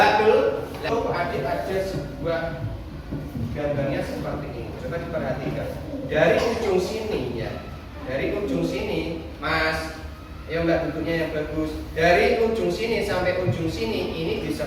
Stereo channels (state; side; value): identical; both; correlation 1.00